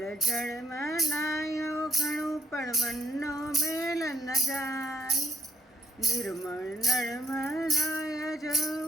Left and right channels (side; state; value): both; normal; correlation 0.66